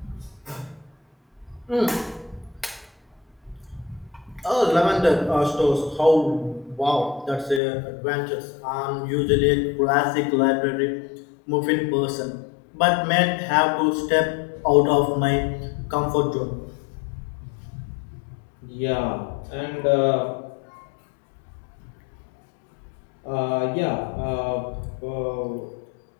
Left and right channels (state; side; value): drops out; right; at 7.6 s